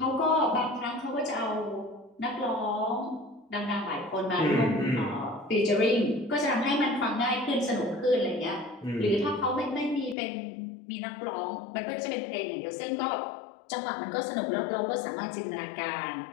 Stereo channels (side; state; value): right; drops out; at 10.2 s